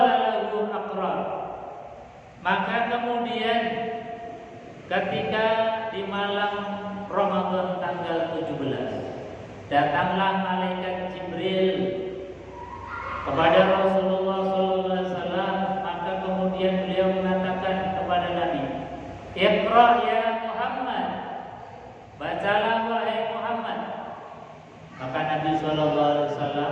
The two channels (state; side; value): identical; both; correlation 1.00